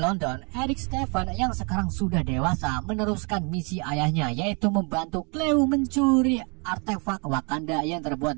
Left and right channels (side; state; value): left; quieter; 33.3 dB